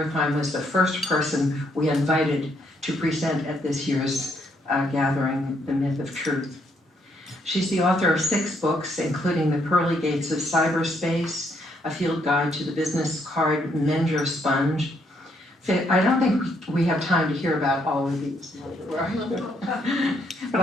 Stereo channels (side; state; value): both; normal; correlation 0.72